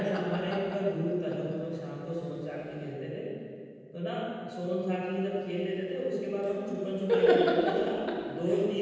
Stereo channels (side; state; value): both; identical; correlation 1.00